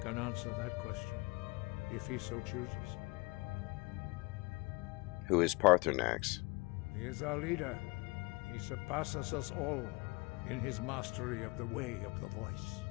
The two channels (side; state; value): right; quieter; 26.2 dB